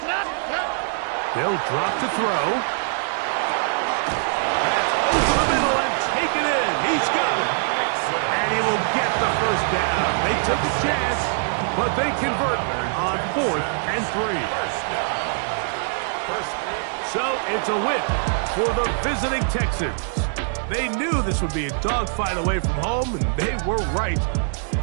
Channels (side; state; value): left; silent; 63 dB below the other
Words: They'll drop to throw. Take it in. He's got it. And he will get the first down. They took a chance, but they convert on 4th and 3. So it's a win for the visiting Texans. They knew this would be a dogfight away from home, and they were right.